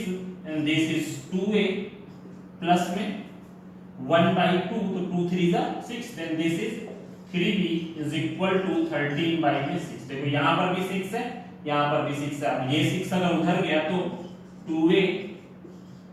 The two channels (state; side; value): identical; both; correlation 1.00